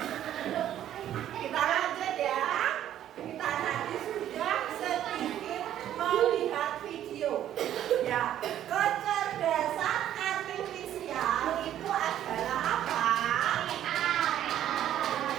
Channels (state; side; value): quieter; left; 11.4 dB